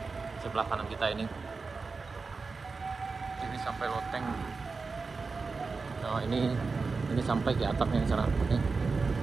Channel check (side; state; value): left; quieter; 4.3 dB